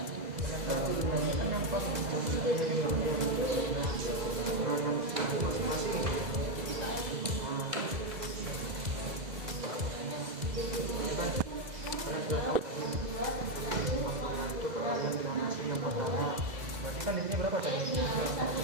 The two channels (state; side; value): late; left; 2.0 ms